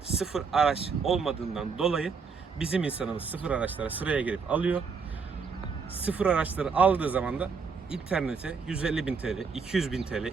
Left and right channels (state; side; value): quieter; left; 5.3 dB